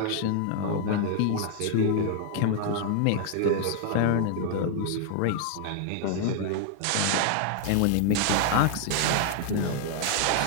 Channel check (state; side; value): different; both; correlation 0.00